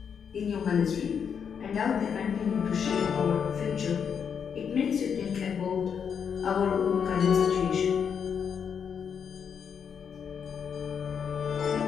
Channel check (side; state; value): right; quieter; 7.2 dB